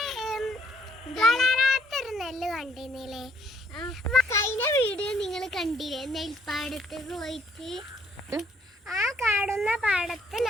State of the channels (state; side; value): normal; both; correlation 0.67